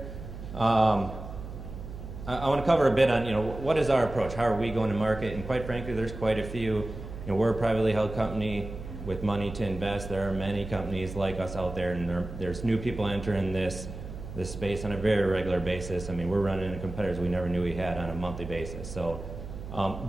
I want to cover a bit on, what is our approach? How are we going to market? And quite frankly, there's quite a few. We're a privately held company with money to invest. There are many companies like us out there, and there's new people entering this space on a very regular basis. I mean, we're running into competitors we never knew we had on a monthly basis. So a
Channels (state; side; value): noise; right; hum, 10 dB below the sound